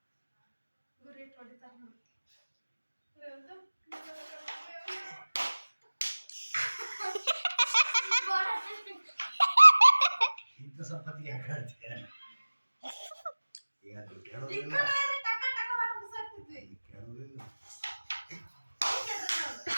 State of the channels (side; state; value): both; inverted; correlation -1.00